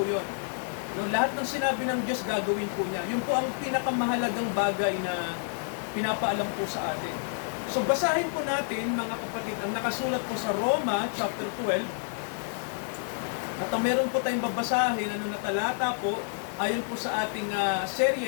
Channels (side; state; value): right; silent; digital silence